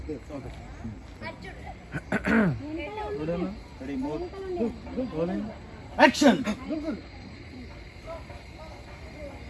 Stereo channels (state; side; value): identical; both; correlation 1.00